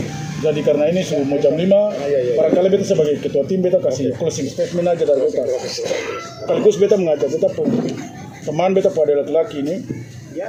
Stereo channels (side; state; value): both; identical; correlation 1.00